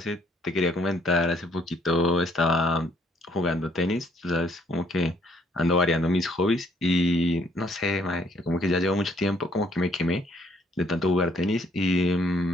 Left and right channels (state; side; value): normal; both; correlation 0.65